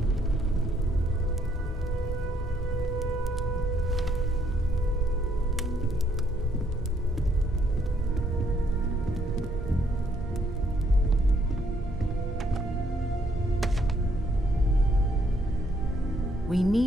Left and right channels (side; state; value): both; normal; correlation 0.70